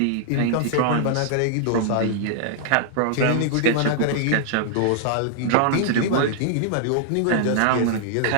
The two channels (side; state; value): both; different; correlation -0.01